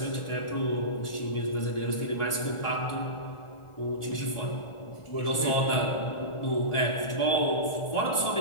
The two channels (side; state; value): right; late; 1.4 ms